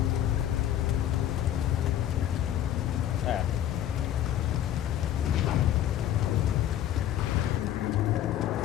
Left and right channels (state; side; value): quieter; right; 11.4 dB